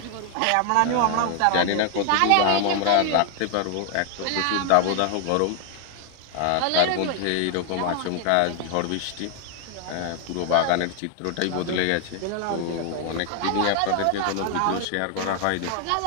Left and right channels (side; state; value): both; different; correlation 0.01